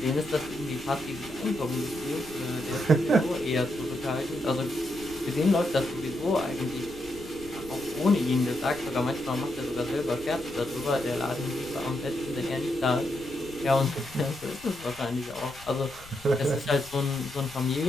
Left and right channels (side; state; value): left; noise; rumble, 20 dB below the sound